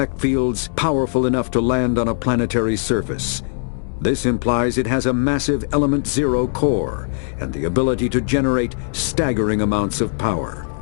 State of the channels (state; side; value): silent; right; 65 dB below the other